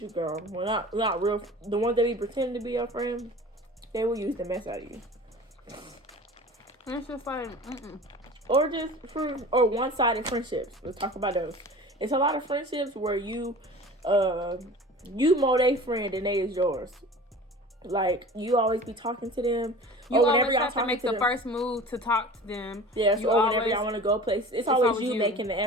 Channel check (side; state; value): both; normal; correlation 0.40